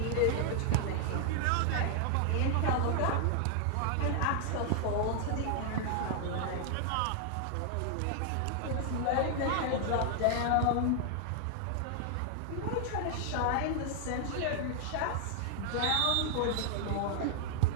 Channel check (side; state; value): both; different; correlation 0.00